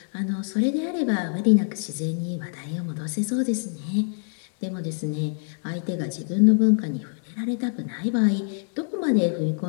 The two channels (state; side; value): silent; right; 62 dB below the other